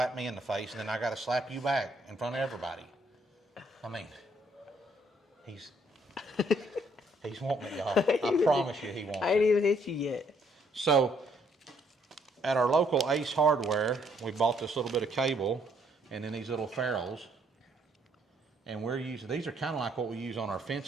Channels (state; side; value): normal; both; correlation 0.68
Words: me in the face, and then I got to slap you back in front of everybody. I mean, he's wanting it, y'all. I promise you he wants it. I ain't even hit you yet. So, at our local Ace Hardware, we bought this little bit of cable and then these little ferrules. And we're using, these are kind of like what we use on our